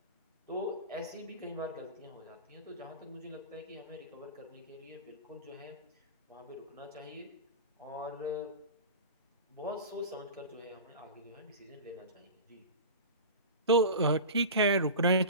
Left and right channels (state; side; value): inverted; both; correlation -0.30